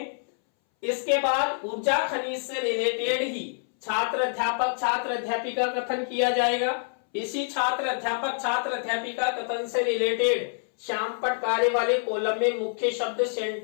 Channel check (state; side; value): silent; right; 60 dB below the other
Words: इसके बाद ऊर्जा खनिज से रिलेटेड ही छात्र अध्यापक छात्र अध्यापिका कथन किया जाएगा। इसी छात्र अध्यापिका कथन से रिलेटेड श्यामपट्ट कार्य वाले कॉलम में मुख्य शब्द